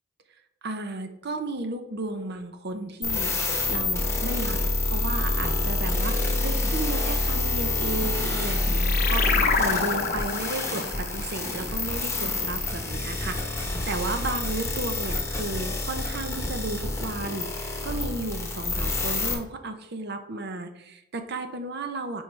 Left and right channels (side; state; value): both; normal; correlation 0.49